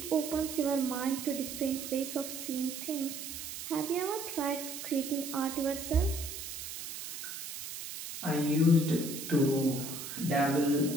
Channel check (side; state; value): right; noise; hiss, 8 dB below the sound